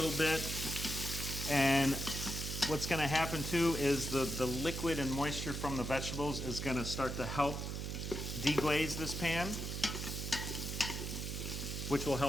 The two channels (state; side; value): noise; right; hum, 4 dB below the sound